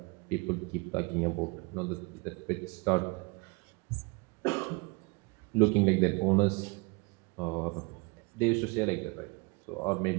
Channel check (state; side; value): quieter; left; 28.3 dB